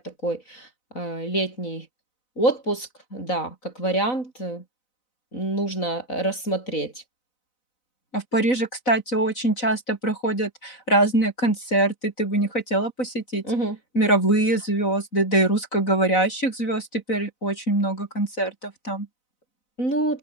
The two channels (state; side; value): late; right; 4.0 ms